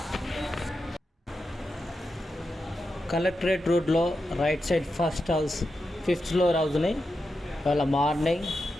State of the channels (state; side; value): normal; both; correlation 0.88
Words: Collectorate రోడ్లో right side first house, 5th floor హౌస్ని ఇవాళ మార్నింగ్